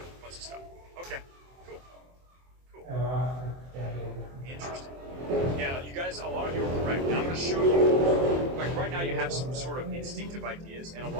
bunch of stuff. Okay, cool. Interesting. Yeah, you guys, a lot of you are correct. And I'm going to show you, like right now you have some sort of instinctive ideas, and a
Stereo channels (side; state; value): left; late; 24 ms